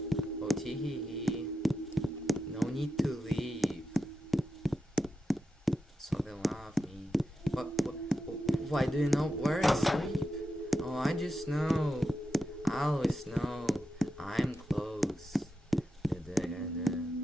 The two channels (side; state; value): both; normal; correlation 0.88